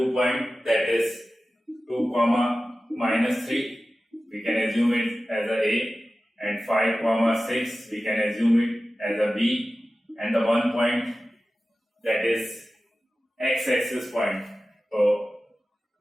point, that is 2 comma minus 3, we can assume it as a and 5 comma 6 we can assume it as a b, and the 1 point that is x-axis point. So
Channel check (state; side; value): normal; both; correlation 0.95